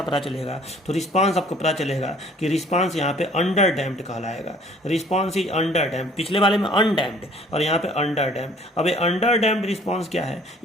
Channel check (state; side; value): normal; both; correlation 0.55